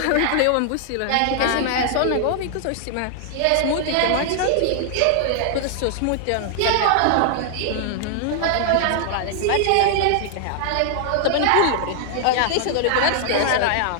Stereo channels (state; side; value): different; both; correlation 0.00